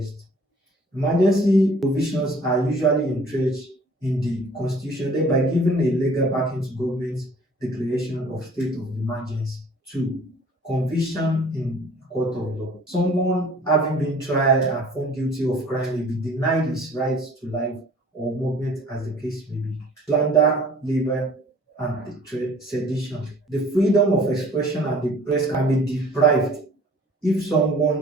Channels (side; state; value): both; normal; correlation 0.51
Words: Emergency provisions are usually entrenched in the constitution, thereby giving a legal backing to government's declaration of state of emergency. Two, conviction in court of law. Someone having been tried and found guilty of crime may be denied his rights to life or movement as the case may be. Slander, labor, and sedition. The freedom of expression and the press can be deprived if